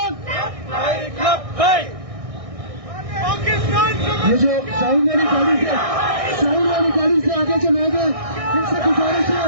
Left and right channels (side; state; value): left; late; 1.6 ms